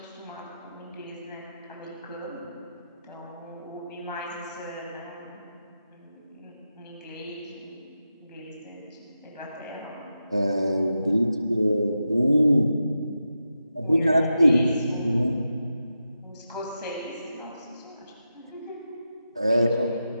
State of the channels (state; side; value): inverted; both; correlation -0.89